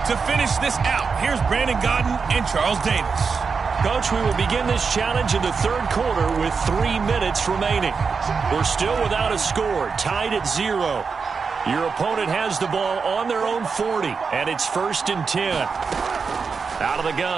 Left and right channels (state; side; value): quieter; left; 5.3 dB